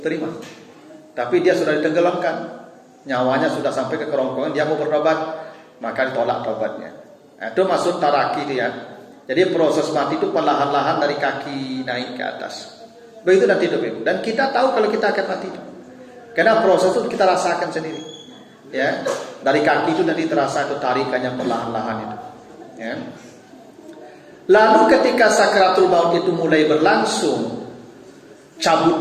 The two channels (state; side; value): identical; both; correlation 1.00